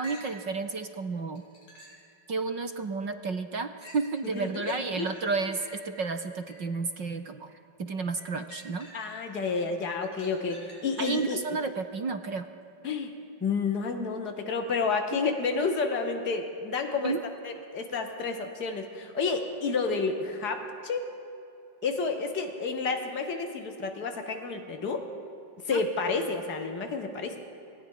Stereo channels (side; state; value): left; late; 5.5 ms